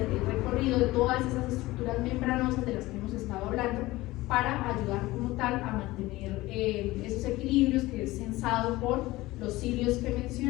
el recorrido de todas esas estructuras membranosas de las que hemos estado hablando para ayudar como tal a mantener esos equilibrios que es censado por los cilios que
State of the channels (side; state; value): right; quieter; 18.9 dB